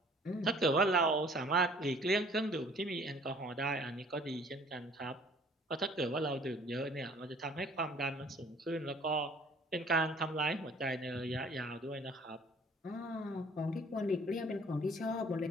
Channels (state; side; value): normal; both; correlation 0.54